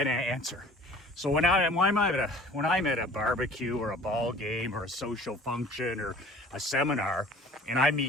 answer. So when I'm at a barbecue or a ball game or a social function or a seminar, and I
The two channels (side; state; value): both; normal; correlation 0.48